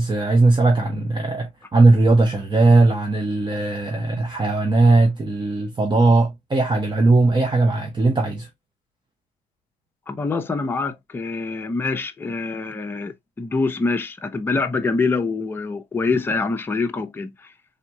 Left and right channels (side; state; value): both; normal; correlation 0.86